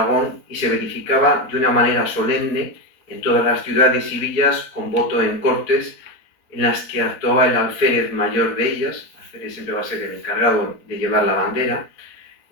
y se verificaba de una manera solemne en todas las ciudades y villas con voto en cortes, en las que actuaba el alférez mayor de ellas. El alférez siempre va a ser el encargado de llevar la bandera,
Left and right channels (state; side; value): late; right; 4.3 ms